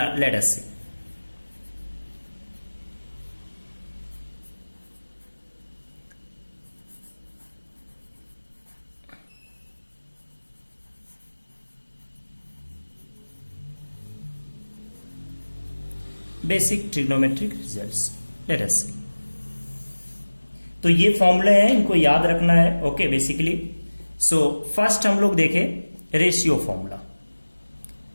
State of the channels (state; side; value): inverted; both; correlation -1.00